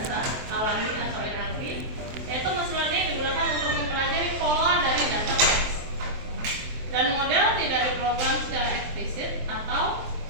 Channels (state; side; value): late; left; 23 ms